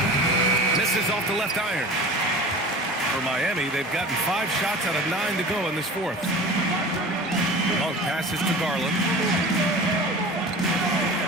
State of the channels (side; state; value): both; normal; correlation 0.37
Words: Misses off the left iron. For Miami, they've gotten 5 shots out of 9 to go in this fourth. Long passes to Garland.